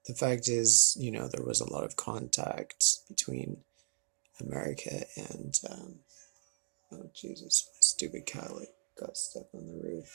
the fact is, there was a lot of contact between America and oh Jesus, my stupid cat, like got stuck on the roof.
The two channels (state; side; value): silent; left; digital silence